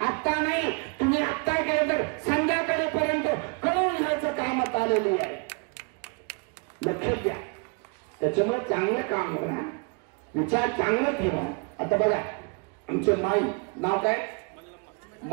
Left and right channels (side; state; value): left; quieter; 33.8 dB